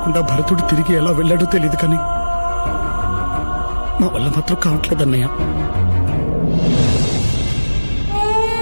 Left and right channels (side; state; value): both; inverted; correlation -1.00